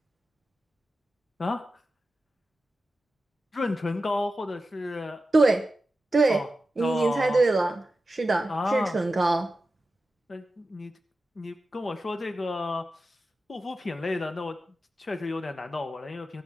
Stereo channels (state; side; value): normal; both; correlation 0.92